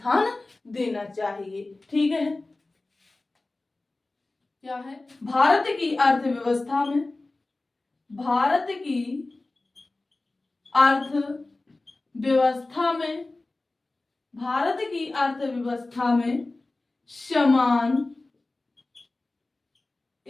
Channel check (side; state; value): right; quieter; 3.1 dB